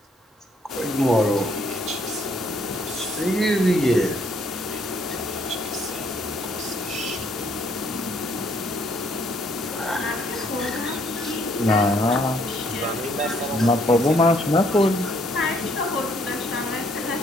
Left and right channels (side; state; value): both; normal; correlation 0.67